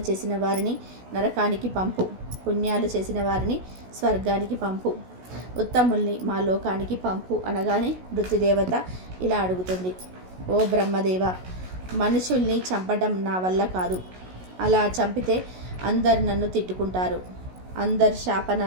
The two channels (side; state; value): left; late; 16 ms